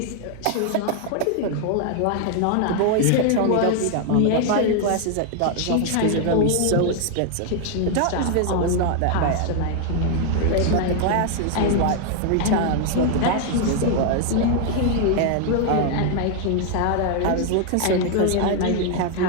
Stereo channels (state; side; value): different; both; correlation 0.00